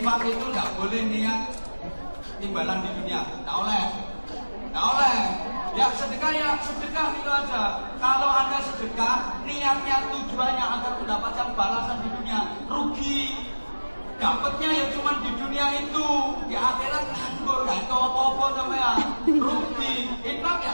itu nggak boleh niat timbalan di dunia, nggak oleh. Ya sedekah itu aja. Kalau Anda sedekah, niatnya tujuannya agar mendapatkan balasan di dunia, rugi. Dapatnya ya cuma di dunia itu, di akhirat nganggur, gak itu apa-apa sampean. Rugi. Infak ya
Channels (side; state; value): both; inverted; correlation -1.00